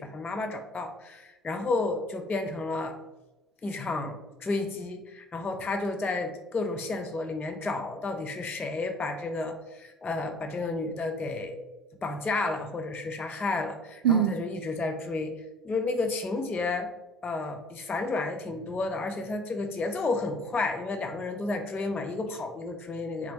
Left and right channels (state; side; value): normal; both; correlation 0.56